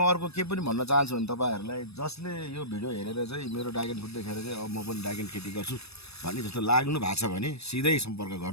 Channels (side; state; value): right; late; 0.78 ms